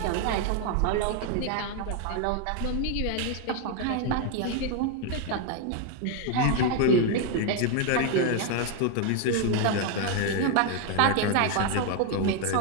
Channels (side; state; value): both; different; correlation 0.00